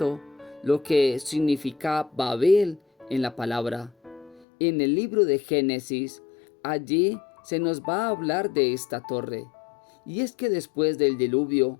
lo que significa Babel en la palabra. En el libro de Génesis, allí se nos va a hablar de esta torre. Y es que después del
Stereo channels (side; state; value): right; drops out; at 4.5 s